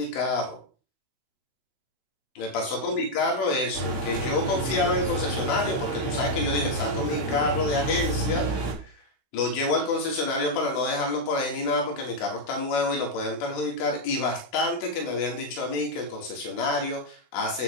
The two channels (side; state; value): right; late; 16 ms